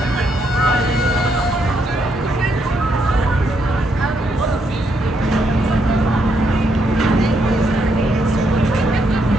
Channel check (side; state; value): both; normal; correlation 0.76